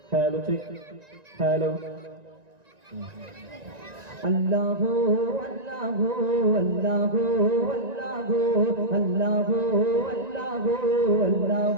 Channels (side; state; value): left; late; 1.9 ms